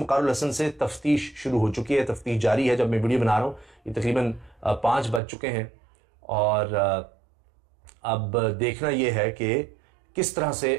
वक़ारुल हसन से तफ्तीश शुरू हो चुकी है। तफ्तीश जारी है। जब मैं वीडियो बना रहा हूँ ये तकरीबन 5 बज चुके हैं और अब देखना यह है कि किस तरह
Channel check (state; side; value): drops out; left; at 5.2 s